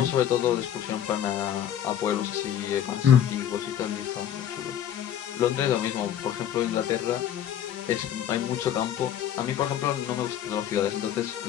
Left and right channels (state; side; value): quieter; right; 10.2 dB